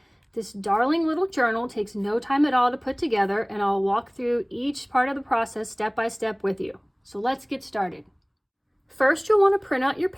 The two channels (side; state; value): both; identical; correlation 1.00